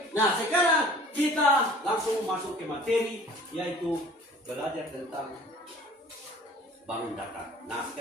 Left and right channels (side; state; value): both; normal; correlation 0.49